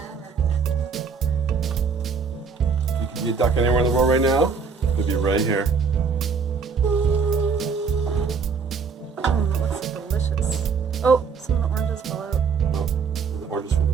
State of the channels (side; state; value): left; quieter; 5.3 dB